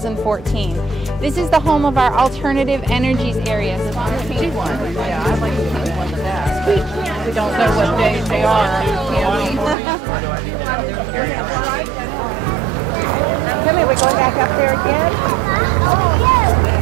This is the home of our alternative energies area. Yeah, I like the pink one the best. We don't know what days they are. Come here, we're going back up there again?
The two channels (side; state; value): left; drops out; at 9.8 s